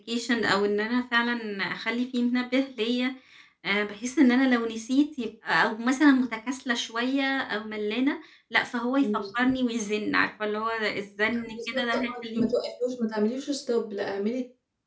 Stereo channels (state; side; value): identical; both; correlation 1.00